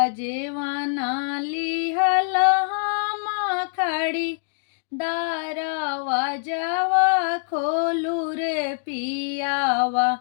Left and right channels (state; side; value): silent; right; digital silence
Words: जेव्हा नाली हलहामा खाडी दारा वाजावा खोलू रे पियावा